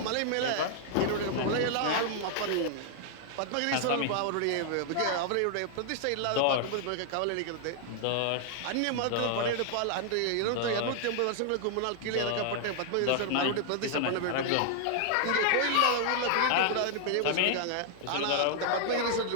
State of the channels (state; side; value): different; both; correlation -0.01